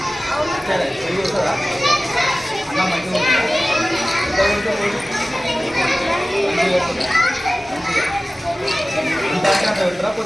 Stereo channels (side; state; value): both; normal; correlation 0.96